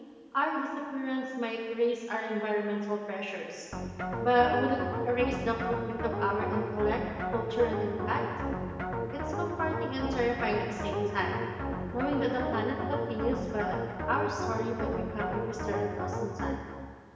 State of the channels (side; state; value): both; identical; correlation 1.00